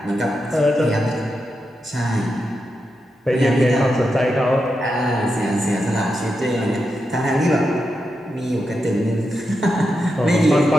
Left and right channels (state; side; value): normal; both; correlation 0.87